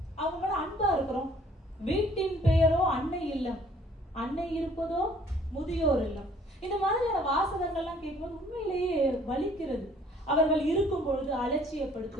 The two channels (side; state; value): both; normal; correlation 0.58